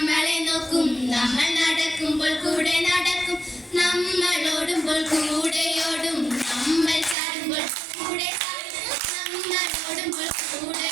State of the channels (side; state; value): left; drops out; at 7.2 s